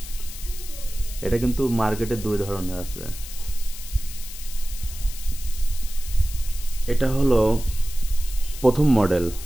এটা কিন্তু মার্কেটে দুই ধরনের আছে। এটা হলো প্রথম মডেল।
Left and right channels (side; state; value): left; noise; hiss, 13 dB below the sound